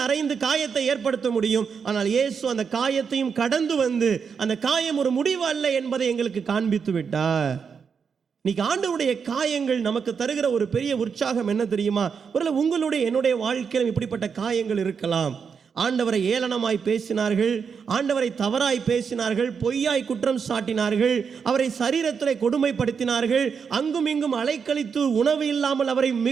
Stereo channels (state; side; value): quieter; left; 6.3 dB